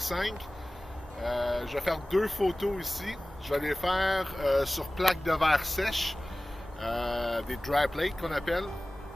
Je vais faire 2 photos ici. Je vais les faire sur plaque de verre sèche, des dry plates qu'on appelle.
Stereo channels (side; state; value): both; normal; correlation 0.97